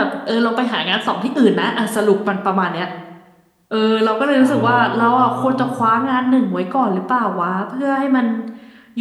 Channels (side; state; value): both; identical; correlation 1.00